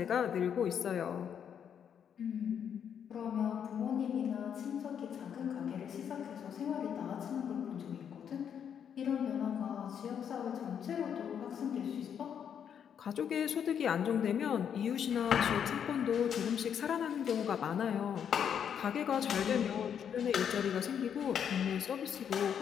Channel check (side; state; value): right; quieter; 8.2 dB